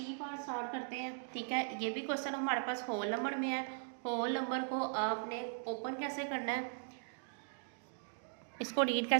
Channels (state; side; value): silent; left; digital silence